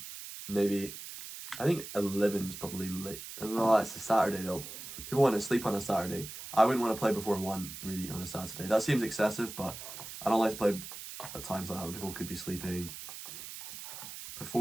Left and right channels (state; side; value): noise; right; hiss, 11 dB below the sound